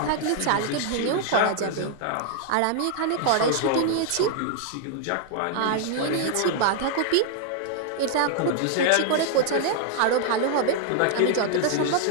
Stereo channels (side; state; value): both; different; correlation -0.01